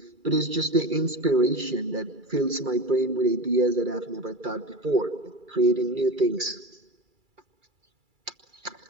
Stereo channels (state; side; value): late; left; 2.3 ms